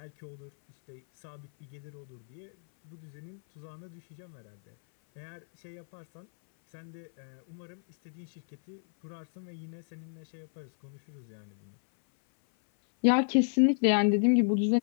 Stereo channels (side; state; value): right; silent; 56 dB below the other